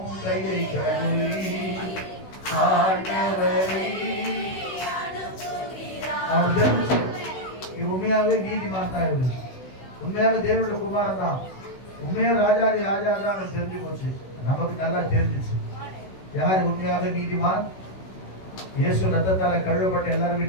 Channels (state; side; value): late; right; 16 ms